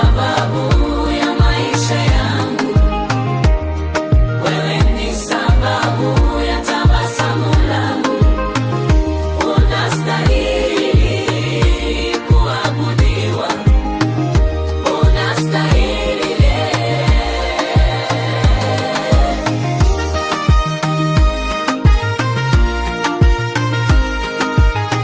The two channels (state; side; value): identical; both; correlation 1.00